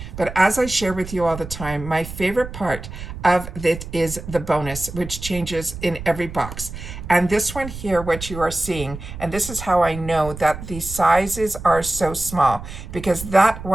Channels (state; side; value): noise; right; rumble, 11 dB below the sound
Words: But as I share with you all the time, my favorite part of it is the bonus, which changes in every box. And this one here, what you are seeing, and this is how I know that the sizes are so small, because that